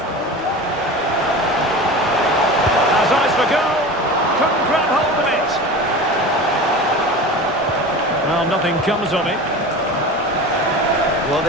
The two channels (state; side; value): normal; both; correlation 0.33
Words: Has eyes for goal. Couldn't grab hold of it. Well, nothing comes of it. Well,